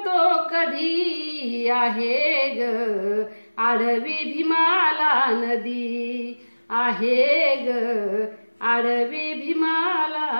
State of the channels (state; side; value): inverted; both; correlation -1.00